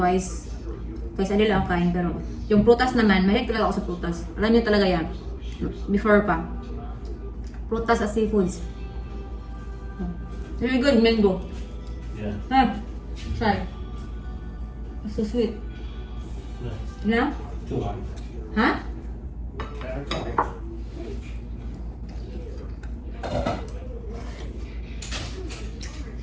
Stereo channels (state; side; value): identical; both; correlation 1.00